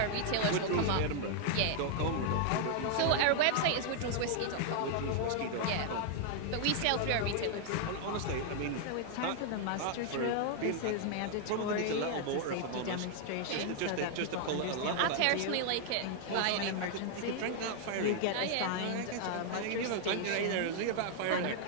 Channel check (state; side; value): different; both; correlation 0.00